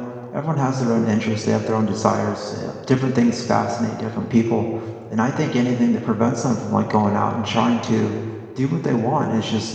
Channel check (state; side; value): identical; both; correlation 1.00